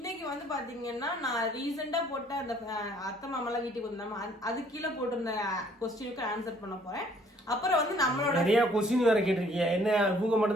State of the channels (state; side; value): normal; both; correlation 0.60